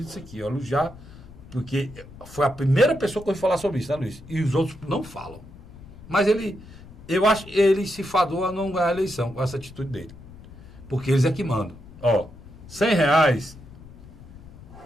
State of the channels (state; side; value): noise; left; rumble, 18 dB below the sound